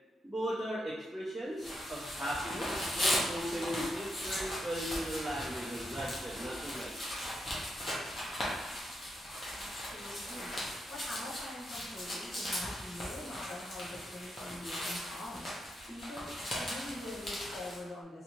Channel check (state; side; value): normal; both; correlation 0.82